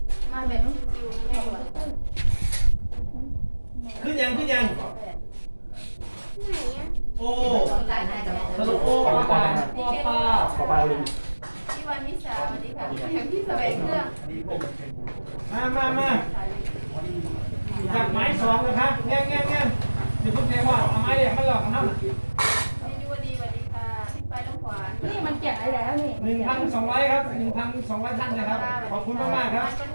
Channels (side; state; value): both; inverted; correlation -1.00